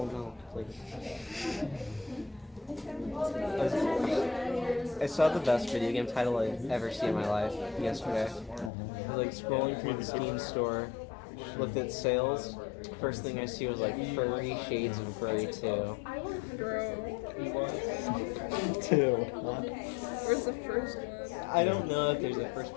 like... I saw the best video game title I've ever seen in my life yesterday. I was like scrolling through the Steam store, looked at sales. First thing I see was like Furry Shades of Grey 2. Bro. 2. Where's the first one? I don't know if there's a first,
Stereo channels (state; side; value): drops out; right; at 8.7 s